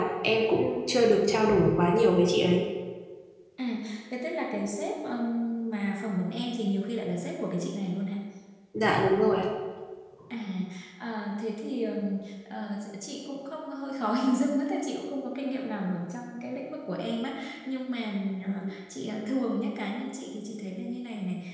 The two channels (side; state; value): both; identical; correlation 1.00